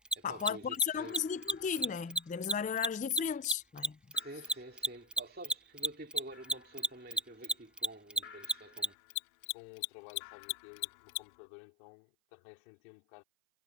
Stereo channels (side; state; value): right; drops out; at 9.0 s